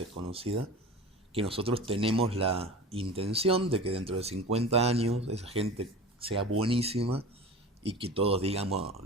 que nosotros tenemos la intención de que dentro de 50 años esa gente sea buenísima y que todos, digamos,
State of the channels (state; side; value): normal; both; correlation 0.34